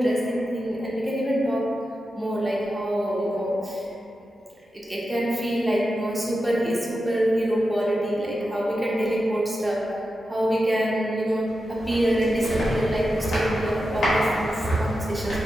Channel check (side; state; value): both; normal; correlation 0.90